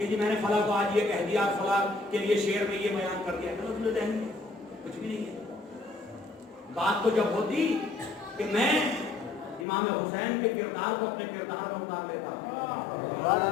جی میں نے فلاں کو آج یہ کہہ دیا، فلاں کے لیے شعر میں یہ بیان کر دیا. تلفظ ذہنی ہے، کچھ بھی نہیں ہے. بات تو جب ہوتی کہ میں امام حسین کے کردار کو اپنے کردار میں اتار لیتا.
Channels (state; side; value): drops out; right; at 9.7 s